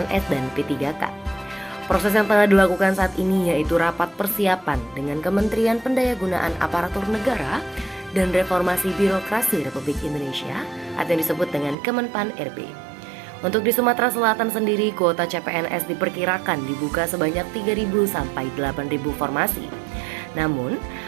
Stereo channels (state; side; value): drops out; left; at 11.8 s